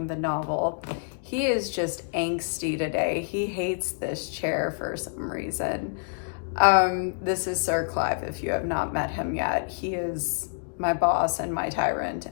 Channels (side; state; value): right; silent; digital silence